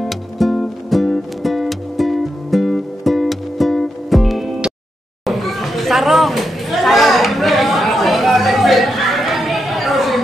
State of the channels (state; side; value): normal; both; correlation 0.85